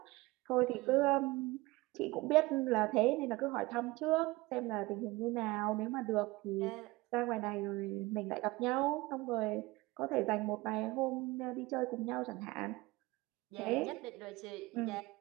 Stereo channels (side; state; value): left; quieter; 21.2 dB